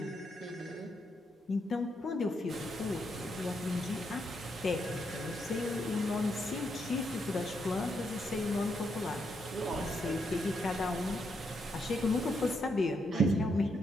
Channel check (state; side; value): normal; both; correlation 0.79